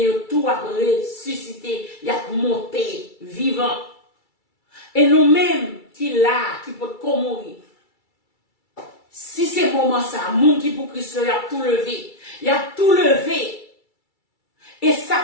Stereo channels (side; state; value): right; late; 2.3 ms